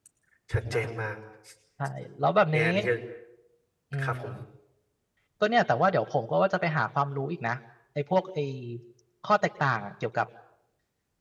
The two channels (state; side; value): identical; both; correlation 1.00